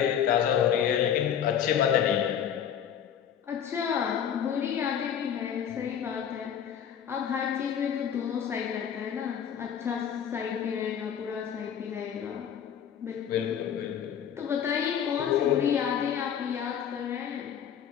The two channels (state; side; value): quieter; right; 8.7 dB